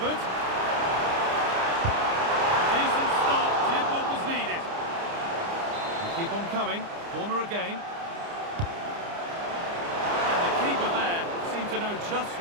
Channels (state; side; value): late; left; 29 ms